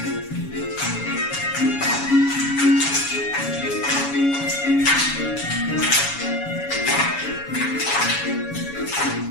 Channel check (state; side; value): late; right; 7.1 ms